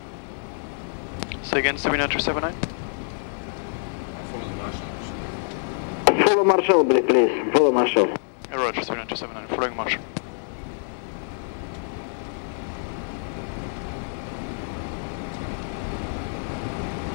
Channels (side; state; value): right; silent; digital silence